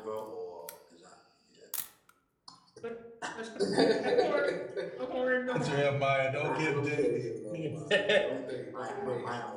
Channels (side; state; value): both; identical; correlation 1.00